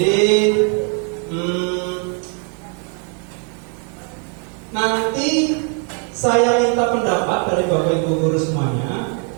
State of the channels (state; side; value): quieter; left; 37.4 dB